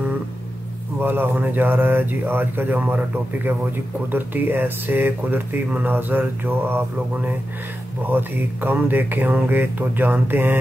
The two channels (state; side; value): normal; both; correlation 0.90